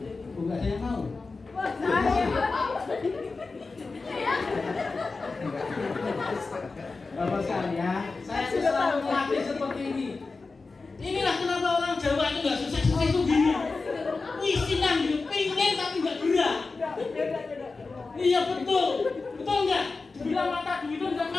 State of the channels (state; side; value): quieter; right; 4.0 dB